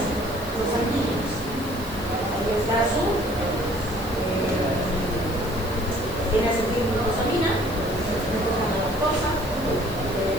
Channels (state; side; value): noise; left; hiss, 15 dB below the sound